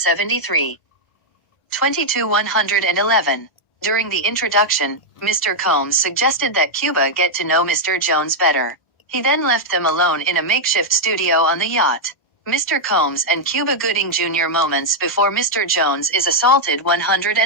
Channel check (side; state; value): right; late; 1.0 ms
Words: 22. 111. During the introduction, Mr. Combs suggested that Cuba get to know Mr. Jones better. He then left them alone in a makeshift studio on the yacht. Mr. Combs and Cuba Gooding Jr. moments before Mr. Jones is assaulted.